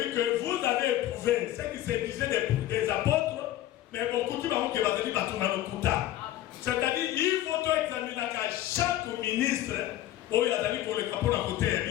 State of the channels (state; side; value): quieter; right; 13.8 dB